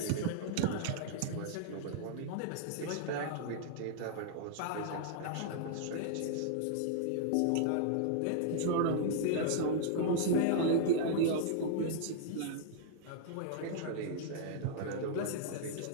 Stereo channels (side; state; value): both; different; correlation -0.01